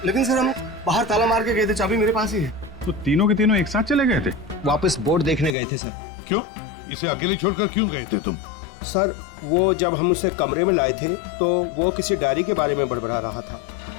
लेकिन सर, हम बाहर ताला मार के गए थे, चाबी मेरे पास ही है। तो तीनों के तीनों एक साथ चले गए थे? वापस बोर्ड देखने गए थे सर। क्यों? इसे अकेले छोड़कर क्यों गए थे तुम? सर, वो जब हम उसे कमरे में लाए थे तो वो किसी डायरी के बारे में बड़बड़ा रहा था,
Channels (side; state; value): right; drops out; at 5.6 s